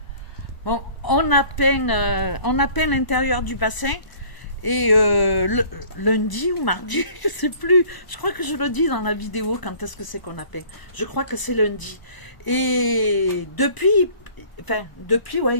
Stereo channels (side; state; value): right; late; 1.0 ms